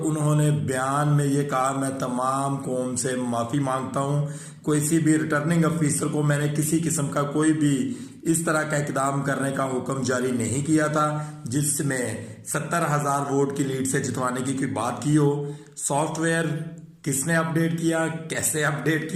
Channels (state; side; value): identical; both; correlation 1.00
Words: बयान में ये कहा मैं तमाम कौम से माफ़ी मांगता हूँ। किसी भी रिटर्निंग अफिसर को मैंने किसी किस्म का कोई भी इस तरह का इकदाम करने का हुक्म जारी नहीं किया था जिसमें 70,000 वोट की लीड से जितवाने की कोई बात की हो। सॉफ्टवेयर किसने अपडेट किया, कैसे अपडेट